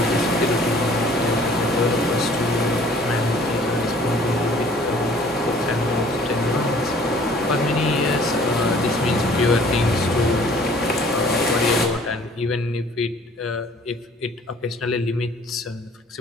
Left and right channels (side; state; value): both; normal; correlation 0.54